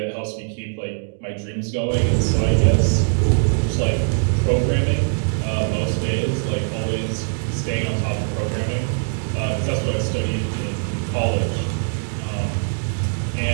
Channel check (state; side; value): silent; left; 64 dB below the other